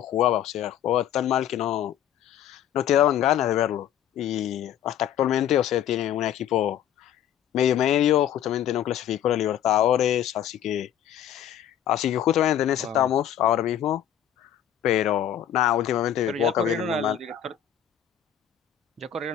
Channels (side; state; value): right; quieter; 10.3 dB